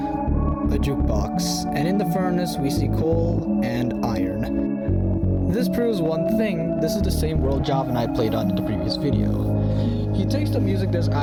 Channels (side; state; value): both; identical; correlation 1.00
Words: jukebox, and in the furnace we see coal and iron. This proves one thing: this is the same world Javanite played on in the previous video. He takes the music disc